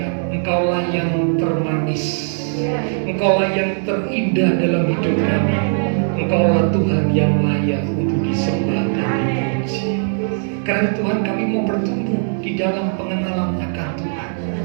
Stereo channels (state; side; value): silent; left; digital silence